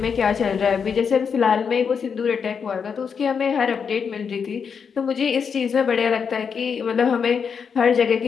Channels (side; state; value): right; quieter; 6.4 dB